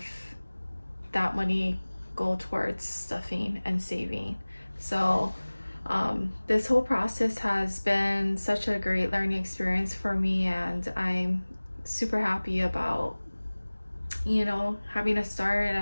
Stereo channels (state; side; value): inverted; both; correlation -1.00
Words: that money go towards stuffing and saving. So this whole process has been such a great learning experience for me, and I'm super happy about having a start